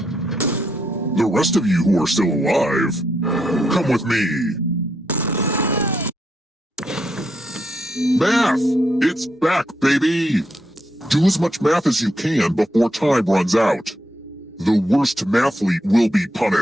The rest of you who are still alive, come with me. Math! It's back, baby! Do as much math as you can before time runs out. The worst mathlete will be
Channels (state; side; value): normal; both; correlation 0.79